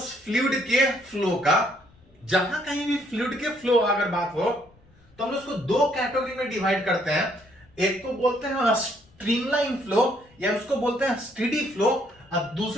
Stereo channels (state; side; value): noise; left; rumble, 30 dB below the sound